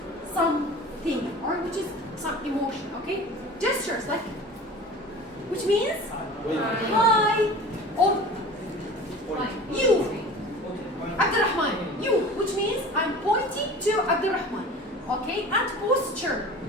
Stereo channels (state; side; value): normal; both; correlation 0.39